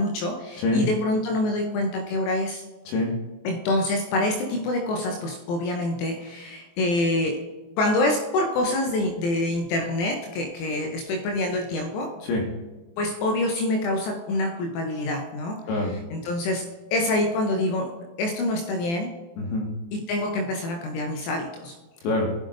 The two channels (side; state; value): right; late; 23 ms